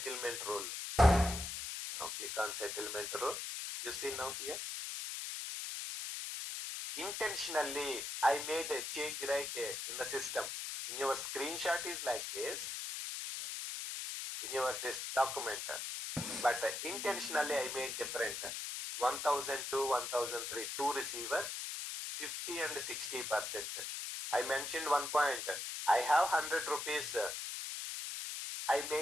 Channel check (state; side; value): noise; left; hiss, 5 dB below the sound